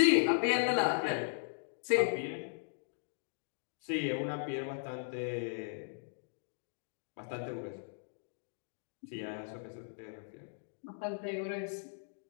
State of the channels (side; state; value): right; silent; digital silence